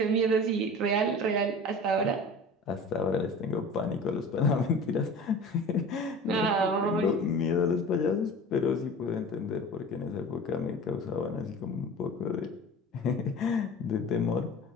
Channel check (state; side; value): normal; both; correlation 0.38